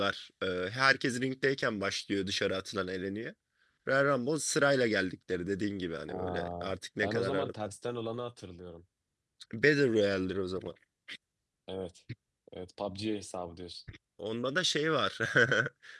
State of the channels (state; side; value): identical; both; correlation 1.00